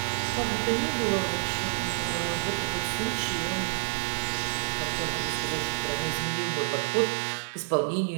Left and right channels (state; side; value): silent; left; digital silence